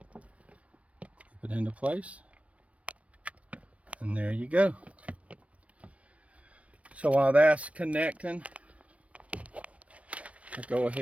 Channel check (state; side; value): late; left; 0.064 ms